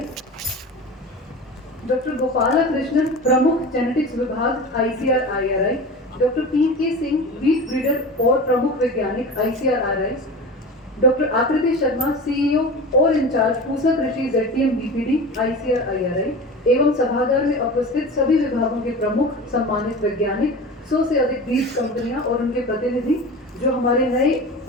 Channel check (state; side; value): normal; both; correlation 0.32